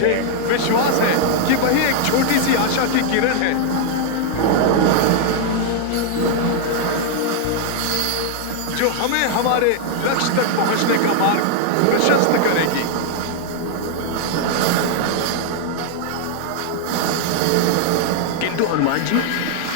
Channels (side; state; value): both; different; correlation 0.00